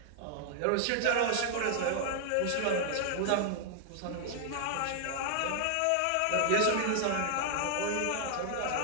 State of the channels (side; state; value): both; different; correlation -0.01